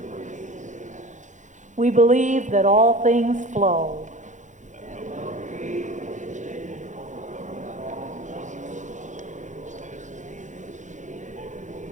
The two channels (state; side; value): late; left; 0.35 ms